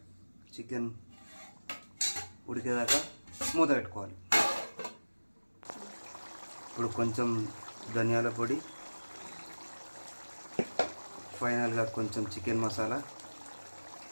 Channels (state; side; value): inverted; both; correlation -1.00